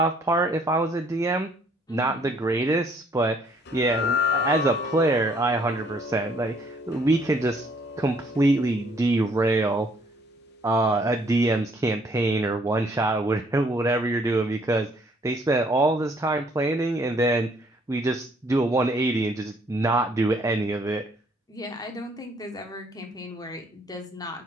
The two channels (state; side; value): normal; both; correlation 0.63